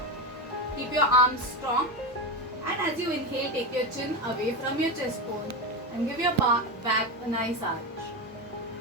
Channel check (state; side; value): normal; both; correlation 0.16